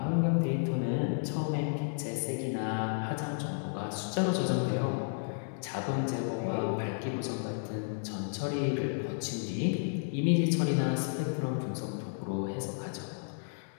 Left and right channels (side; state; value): right; silent; digital silence